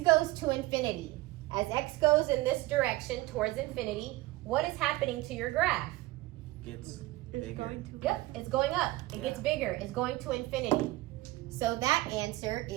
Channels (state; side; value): quieter; left; 19.0 dB